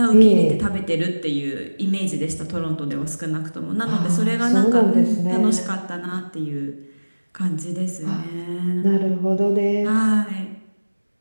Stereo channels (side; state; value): both; inverted; correlation -1.00